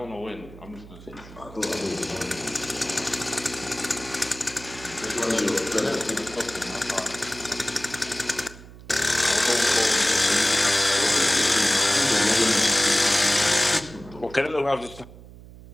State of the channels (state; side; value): noise; right; hum, 18 dB below the sound